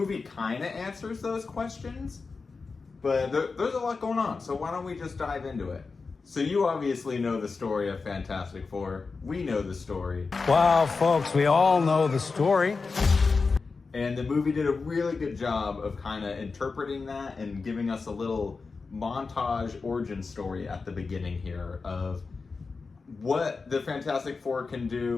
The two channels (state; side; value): quieter; right; 4.4 dB